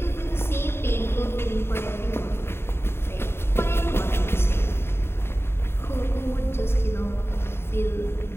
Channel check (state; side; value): late; right; 0.12 ms